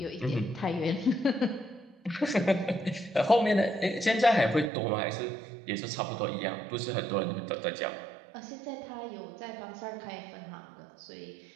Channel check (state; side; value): drops out; left; at 4.7 s